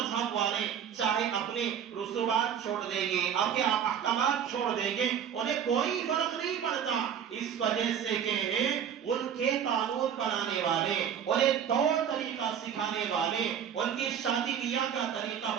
والے چاہے اپنے رسومات چھوڑ دیں گے، اپنے احکامات چھوڑ دیں گے، انہیں کوئی فرق نہیں پڑتا، اس وجہ سے کہ ان کے قانون بنانے والے، انہیں طور طریقہ سکھانے والے، ان کی شادی بیاہ کا طریقہ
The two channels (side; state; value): left; quieter; 8.5 dB